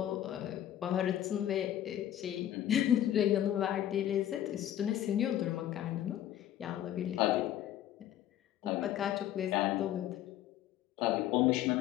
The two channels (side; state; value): right; quieter; 11.9 dB